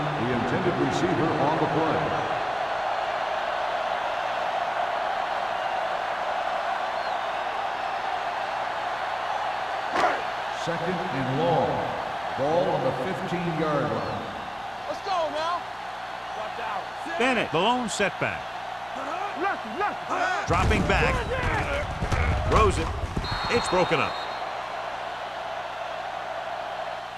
intended receiver on the play. Second and long. Ball on the 15-yard line. Let's go now. Bennett, the lone setback. Dropping back. Throws it. It's broken up.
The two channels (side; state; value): both; identical; correlation 1.00